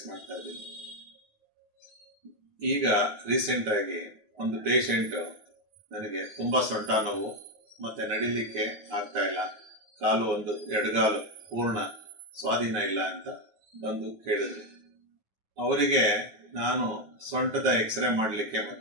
ಮಾಡ್ತಾ ಇದ್ದೀನಿ. ಈಗ ರೀಸೆಂಟಾಗಿ ಒಂದು ಪೇಷಂಟು ನನಗೆ ತುಂಬ ಸೊಂಟ ನೋವು ಮತ್ತು ನಡಿಲಿಕ್ಕೆ ಆಗ್ತಾ ಇಲ್ಲ, ಕಾಲು ಒಂದು ಎಡಗಾಲು ಪೂರ್ಣ ಸ್ವಾಧೀನ ಇಲ್ಲ ಅಂತ ಬಂದು ಕೇಳಿದ್ರು. ಅವರಿಗೆ ನಾನು ಸೊಂಟದ ಎಕ್ಸ್ರೇ ಮಾಡಲಿಕ್ಕೆ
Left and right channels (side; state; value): left; late; 9.4 ms